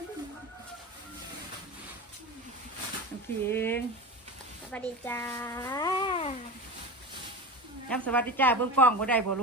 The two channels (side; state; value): both; normal; correlation 0.27